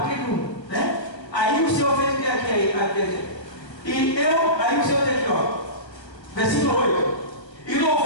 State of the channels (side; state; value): right; late; 1.3 ms